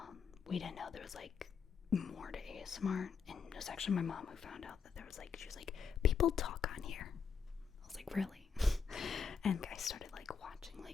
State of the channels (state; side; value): quieter; right; 6.1 dB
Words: we didn't know there was like more to ASMR, and it was actually my mom who found out that there was like, she was like, people talk on here. I was like, really? And I started like watching